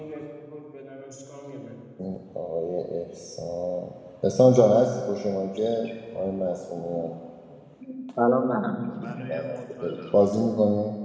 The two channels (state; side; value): identical; both; correlation 1.00